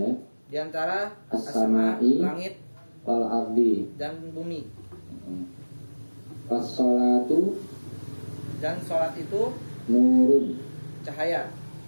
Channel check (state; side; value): inverted; both; correlation -1.00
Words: antara as-samai langit wal ardi dan bumi. Was-sholatu, dan sholat itu nurun, cahaya.